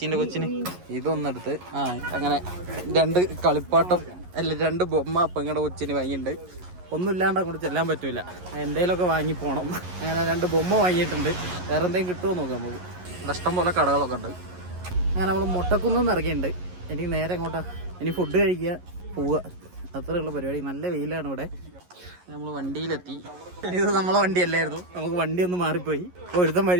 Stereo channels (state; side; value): late; left; 11 ms